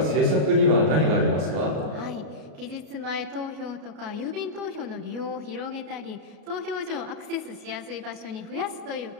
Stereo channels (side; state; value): left; late; 33 ms